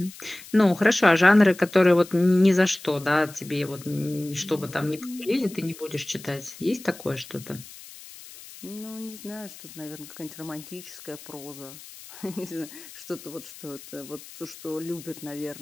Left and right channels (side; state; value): left; noise; hiss, 17 dB below the sound